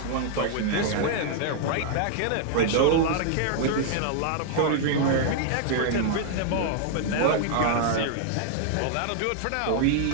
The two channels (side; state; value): both; different; correlation -0.01